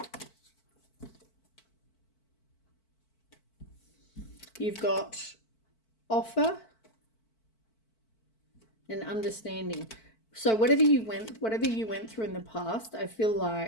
You've got offer and understanding. So whatever you went through in the past, I feel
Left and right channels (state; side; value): late; right; 4.5 ms